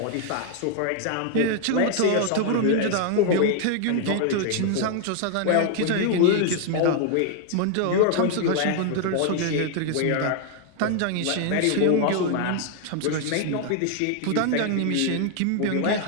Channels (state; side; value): different; both; correlation 0.00